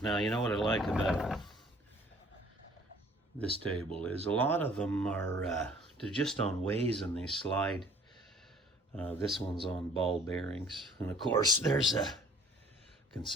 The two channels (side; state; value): both; normal; correlation 0.54